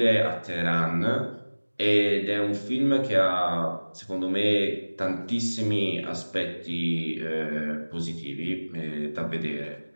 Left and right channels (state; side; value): inverted; both; correlation -1.00